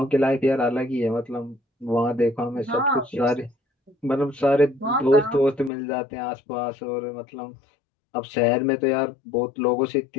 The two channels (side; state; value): right; drops out; at 5.7 s